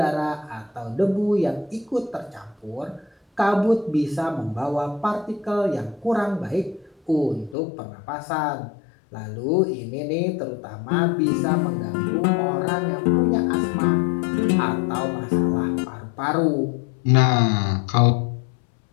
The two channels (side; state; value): right; drops out; at 7.6 s